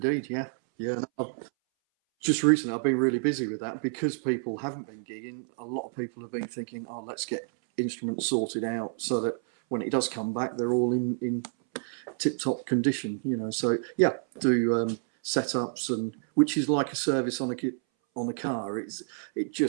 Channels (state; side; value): silent; left; 59 dB below the other